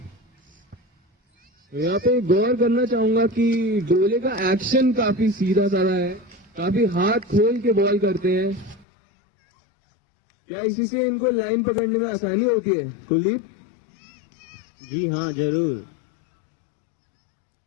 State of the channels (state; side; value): drops out; right; at 8.8 s